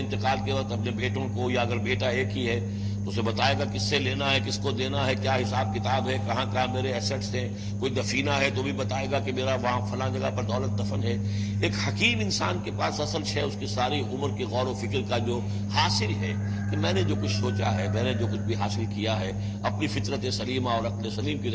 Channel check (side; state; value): both; identical; correlation 1.00